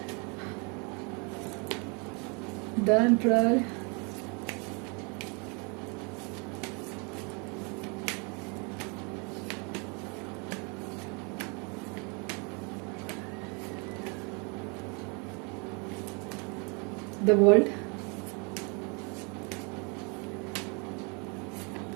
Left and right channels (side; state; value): left; quieter; 32.9 dB